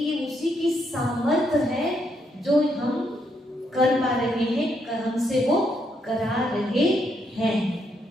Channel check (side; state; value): both; normal; correlation 0.76